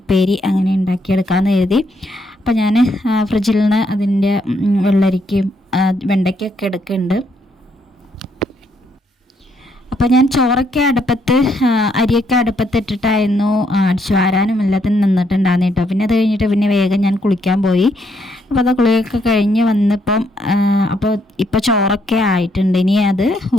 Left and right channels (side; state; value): both; normal; correlation 0.74